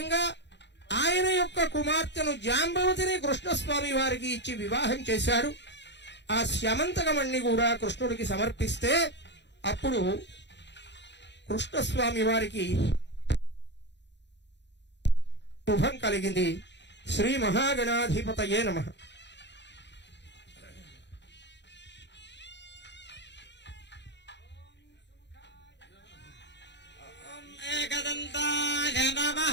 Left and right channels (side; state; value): right; late; 0.51 ms